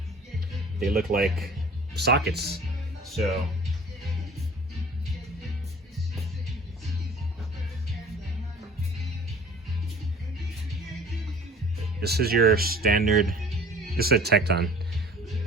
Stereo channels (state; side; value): normal; both; correlation 0.47